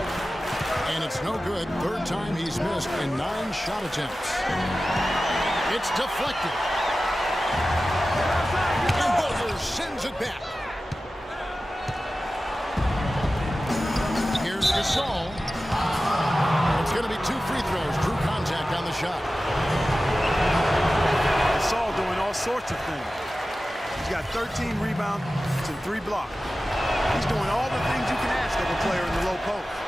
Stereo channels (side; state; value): both; normal; correlation 0.95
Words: And it's no good. Third time he's missed in 9 shot attempts. It's deflected. And Butler sends it back. Here's Gasol. It's going to be 2 free throws. Drew contact on the shot. Gasol doing all sorts of things. He's got 13 rebounds and 3 blocks. He's doing all the things you can ask of a player in the low post.